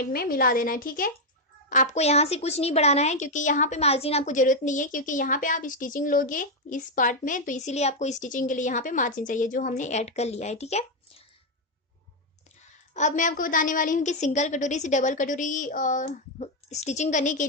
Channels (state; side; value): normal; both; correlation 0.03